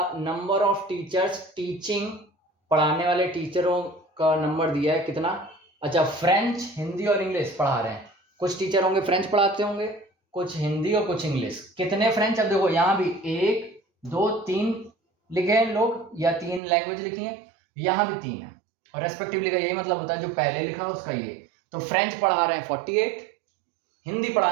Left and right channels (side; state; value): left; drops out; at 16.6 s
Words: number of teachers teaching, पढ़ाने वाले टीचरों का नंबर दिया है कितना। अच्छा, फ्रेंच, हिंदी और इंग्लिश पढ़ा रहे हैं। कुछ टीचर होंगे फ्रेंच पढ़ाते होंगे, कुछ हिंदी और कुछ इंग्लिश। कितने फ्रेंच, अब देखो यहाँ भी 1 2 3 लिखे हैं लोग, या 3 लैंग्वेज लिखी है, यहाँ भी 3 है और रेस्पेक्टिवली का यही मतलब होता है जो पहले लिखा उसका ये। तो फ्रेंच पढ़ा रहे हैं 48, हिंदी